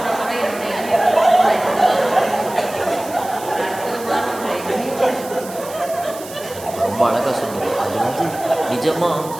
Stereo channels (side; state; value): right; noise; hiss, 15 dB below the sound